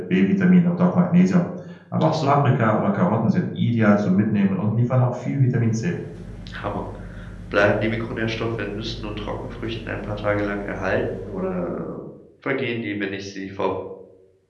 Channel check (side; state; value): both; identical; correlation 1.00